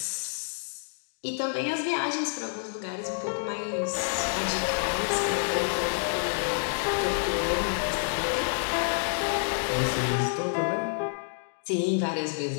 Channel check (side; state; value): right; silent; digital silence